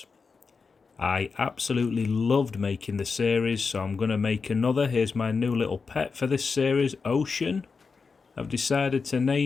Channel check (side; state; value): right; quieter; 4.9 dB